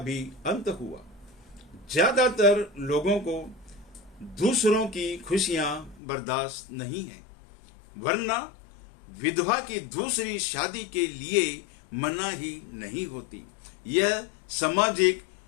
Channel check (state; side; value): drops out; right; at 6.0 s